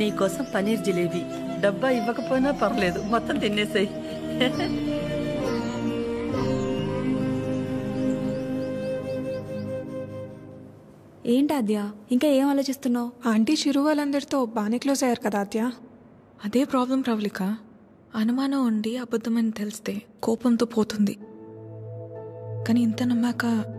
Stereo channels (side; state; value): both; identical; correlation 1.00